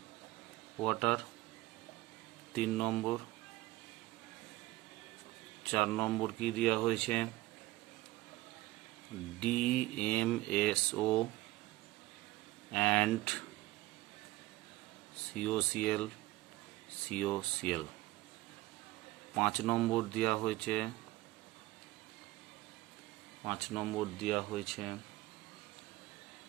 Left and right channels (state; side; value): quieter; left; 18.4 dB